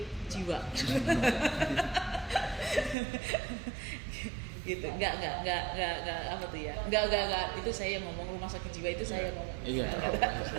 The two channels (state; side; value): drops out; left; at 3.0 s